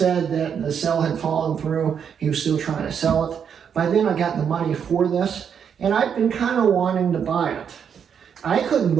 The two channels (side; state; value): left; quieter; 7.6 dB